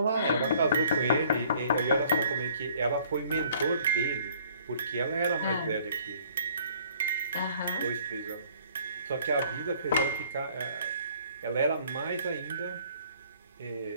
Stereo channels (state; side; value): inverted; both; correlation -0.57